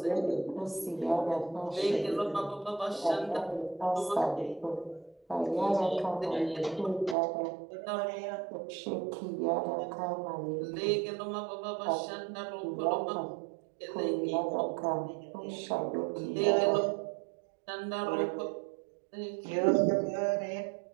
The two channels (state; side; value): drops out; left; at 7.2 s